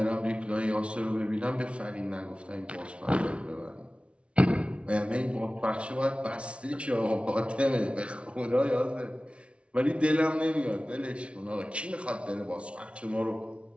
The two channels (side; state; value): left; late; 0.060 ms